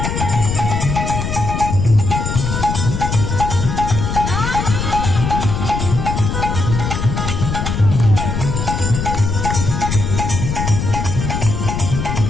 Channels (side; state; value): left; noise; rumble, 2 dB below the sound